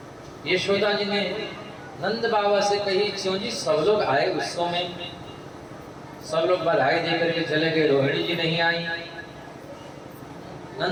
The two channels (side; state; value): both; identical; correlation 1.00